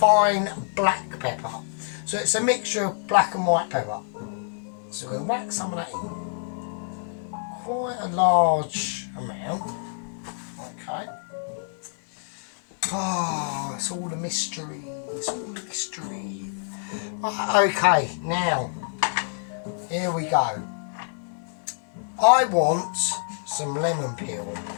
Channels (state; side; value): silent; right; digital silence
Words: black pepper. So it's a mixture of black and white pepper. So we'll whack some of that in. Quite a large amount. Okay. Oh, it's all a mystery. It's all a mystery. Right, okay, now, here we go. I want some lemon peel